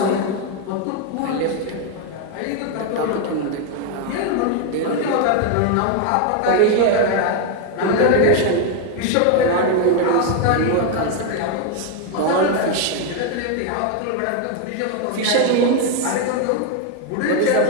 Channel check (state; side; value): different; both; correlation 0.01